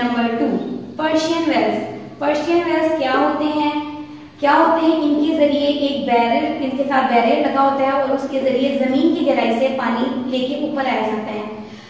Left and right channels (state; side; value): identical; both; correlation 1.00